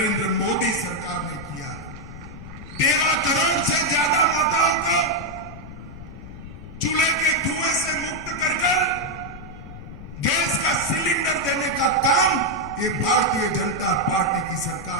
मोदी सरकार ने किया है। 13 करोड़ से ज्यादा माताओं को चूल्हे के धुएं से मुक्त कर गैस का सिलेंडर देने का काम ये भारतीय जनता पार्टी की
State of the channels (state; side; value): noise; left; rumble, 13 dB below the sound